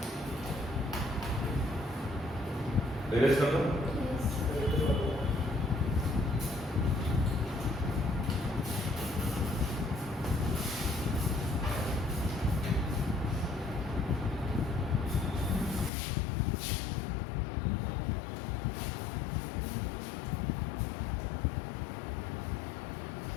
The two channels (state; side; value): drops out; right; at 15.9 s